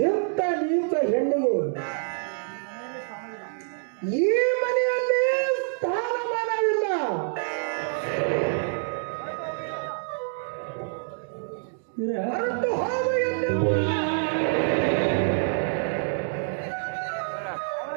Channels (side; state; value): left; silent; digital silence